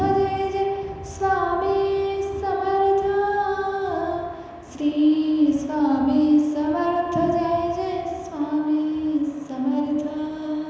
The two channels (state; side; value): identical; both; correlation 1.00